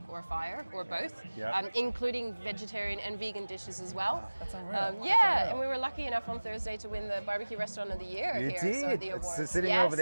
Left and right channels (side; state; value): both; inverted; correlation -1.00